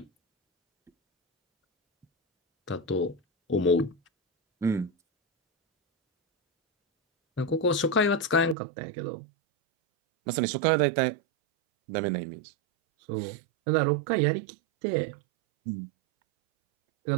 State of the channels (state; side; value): drops out; left; at 8.6 s